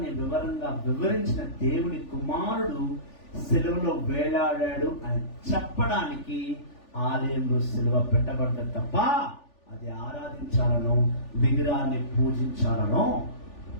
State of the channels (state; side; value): late; right; 3.4 ms